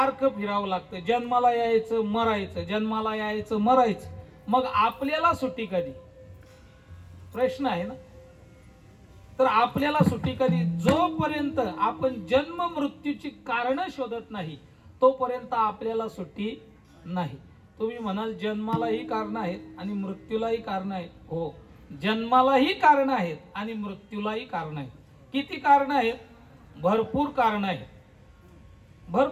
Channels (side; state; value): both; identical; correlation 1.00